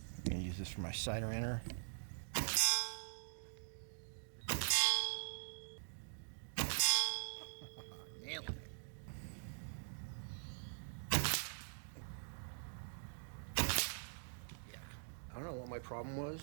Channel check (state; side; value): silent; left; digital silence